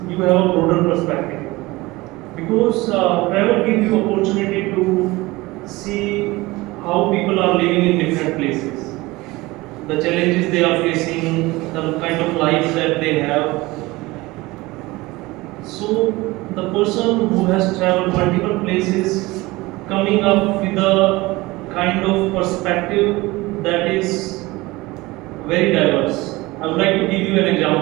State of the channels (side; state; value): left; quieter; 21.0 dB